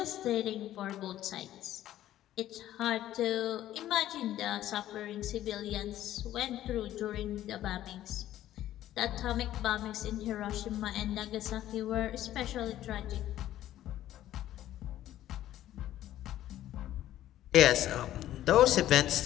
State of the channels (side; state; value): right; quieter; 13.1 dB